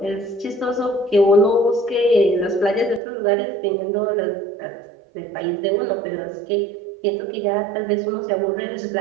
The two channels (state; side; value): drops out; left; at 3.0 s